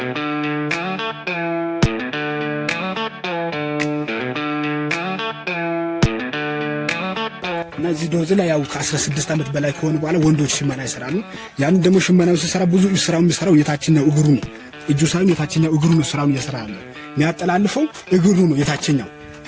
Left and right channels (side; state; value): both; identical; correlation 1.00